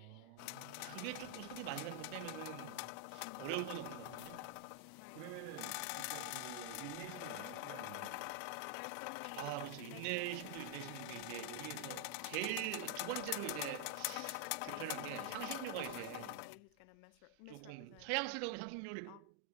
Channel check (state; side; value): different; both; correlation 0.00